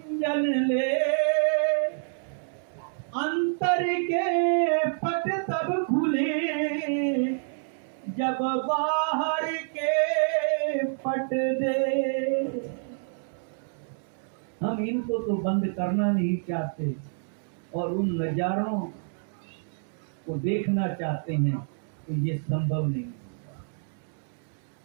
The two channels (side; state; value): left; silent; digital silence